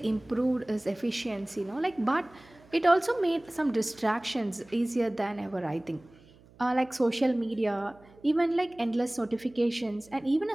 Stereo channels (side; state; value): right; noise; hum, 26 dB below the sound